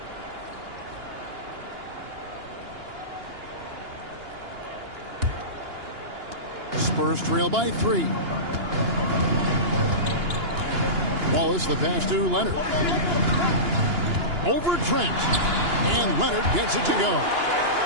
Spurs trail by 3. Wallace, the pass to Leonard. Over Trent. And Leonard gets it to go.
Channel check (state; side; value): late; left; 2.9 ms